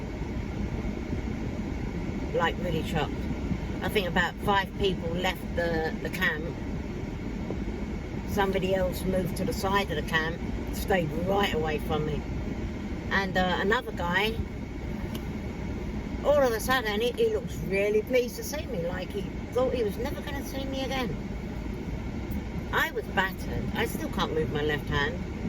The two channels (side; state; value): both; identical; correlation 1.00